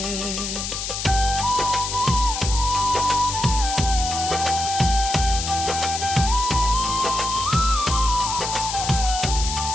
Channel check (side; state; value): left; noise; hiss, 4 dB below the sound